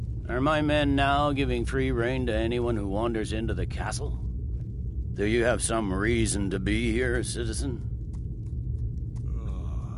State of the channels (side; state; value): both; identical; correlation 1.00